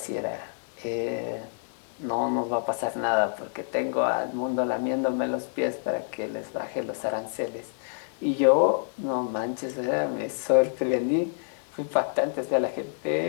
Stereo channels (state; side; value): silent; right; digital silence